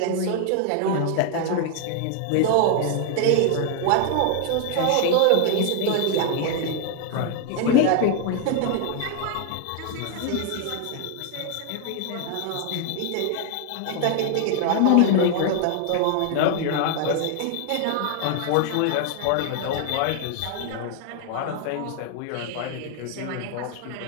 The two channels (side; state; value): both; different; correlation 0.00